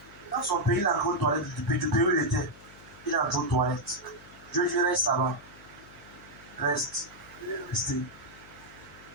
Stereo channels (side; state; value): left; noise; hum, 22 dB below the sound